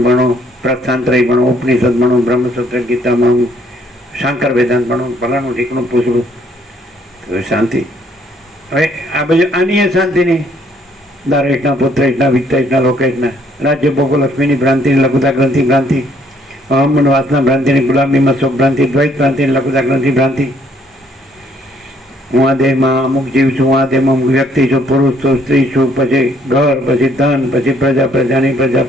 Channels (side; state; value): both; normal; correlation 0.66